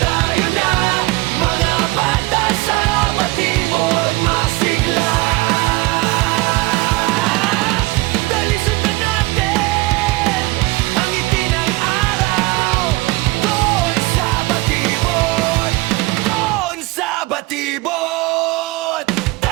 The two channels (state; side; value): quieter; left; 21.7 dB